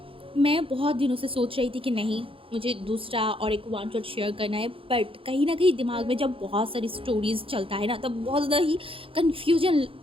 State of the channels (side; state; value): left; late; 0.26 ms